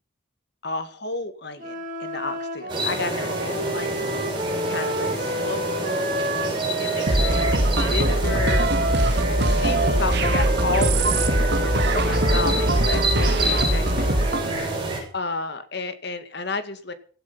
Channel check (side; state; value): both; normal; correlation 0.41